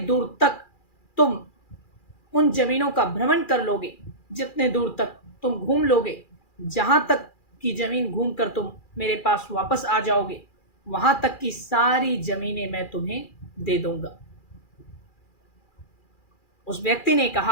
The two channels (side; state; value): right; late; 2.4 ms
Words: तक तुम उन जमीनों का भ्रमण कर लोगे, जितने दूर तक तुम घूम लोगे, जहां तक की जमीन घूम कर तुम मेरे पास वापस आ जाओगे, वहां तक की सारी जमीनें मैं तुम्हें दे दूंगा। उस व्यक्ति ने